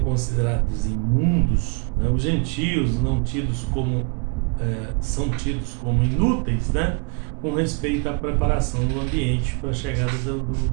imundos, né, os gentios não tidos como, são tidos como inúteis, né, com respeito à preparação do ambiente para a chegada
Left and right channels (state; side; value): quieter; left; 33.7 dB